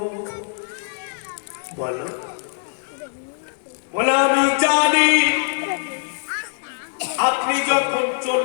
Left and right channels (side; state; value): right; silent; digital silence